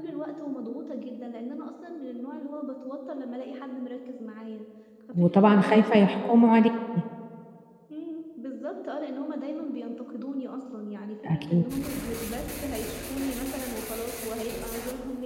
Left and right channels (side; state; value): both; identical; correlation 1.00